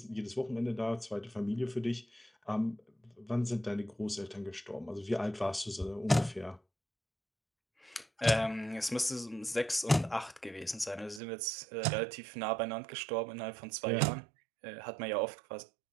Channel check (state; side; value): drops out; left; at 11.2 s